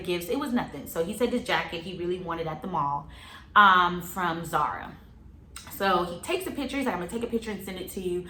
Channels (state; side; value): identical; both; correlation 1.00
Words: It was nothing. So he said this jacket he really wanted at the mall from Zara. So he takes a picture. He's like, I'm gonna take a picture and send it to you.